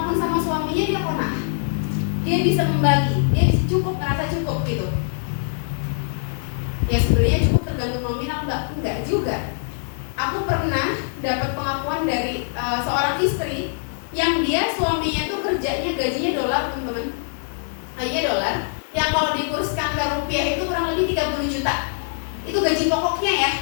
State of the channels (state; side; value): silent; right; digital silence